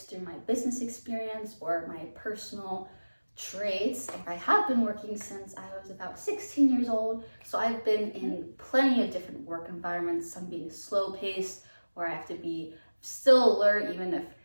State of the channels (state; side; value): inverted; both; correlation -1.00